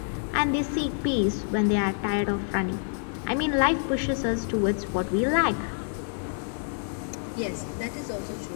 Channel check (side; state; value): right; silent; digital silence